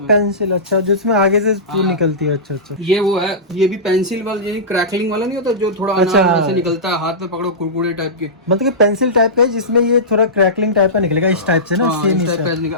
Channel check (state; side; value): normal; both; correlation -0.17